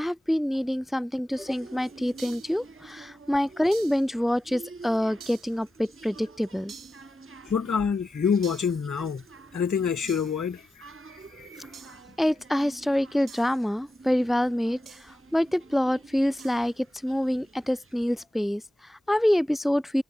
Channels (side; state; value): both; normal; correlation 0.91